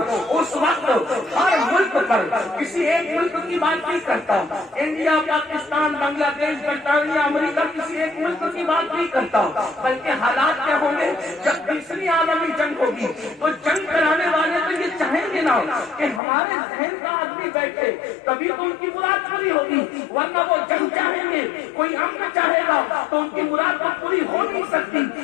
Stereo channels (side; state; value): right; drops out; at 16.2 s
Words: اس وقت ہر ملک پر کسی ایک ملک کی بات نہیں کرتا، انڈیا، پاکستان، بنگلہ دیش، برطانیہ، امریکہ، کسی ایک ملک کی بات نہیں کرتا، بلکہ حالات کیا ہوں گے جب تیسری عالمی جنگ ہوگی تو جنگ کرانے والے تو یہ چاہیں گے نا کہ ہمارے ذہن کا آدمی بیٹھے، تبھی تو ان کی مراد پوری ہوگی، ورنہ وہ جنگ چاہیں گے، کوئی امن چاہے گا تو ان کی مراد تو پوری ہو نہیں سکتی۔